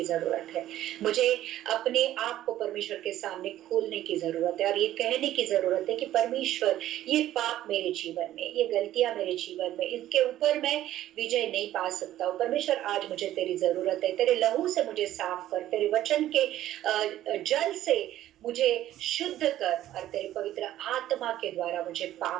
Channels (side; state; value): left; quieter; 13.3 dB